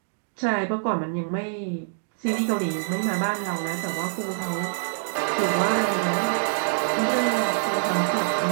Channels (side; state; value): left; silent; digital silence